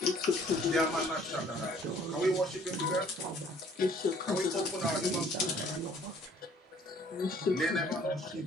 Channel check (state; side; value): normal; both; correlation 0.57